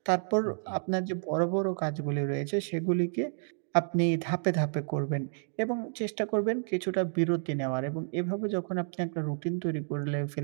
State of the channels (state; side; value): silent; left; digital silence